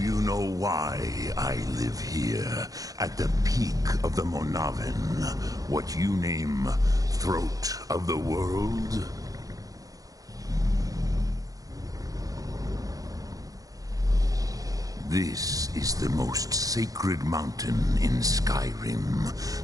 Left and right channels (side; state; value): left; late; 0.17 ms